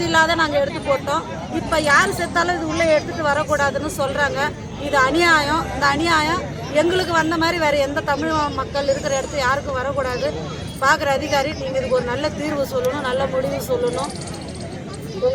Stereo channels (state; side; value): identical; both; correlation 1.00